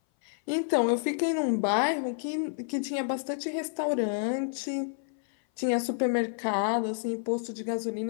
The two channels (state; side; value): silent; right; 57 dB below the other